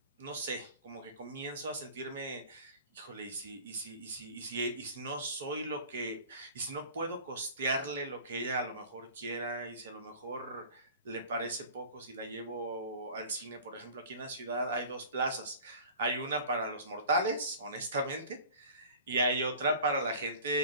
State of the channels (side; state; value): both; inverted; correlation -0.42